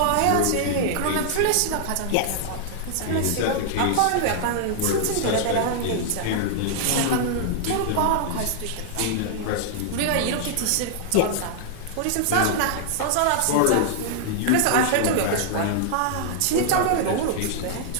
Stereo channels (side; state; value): both; different; correlation -0.01